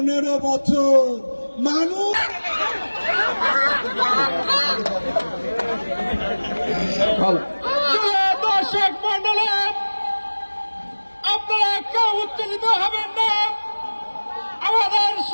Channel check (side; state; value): both; inverted; correlation -1.00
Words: বছর মানুষ। দর্শক মন্ডলী, আপনারা কেউ উত্তেজিত হবেন না। আমাদের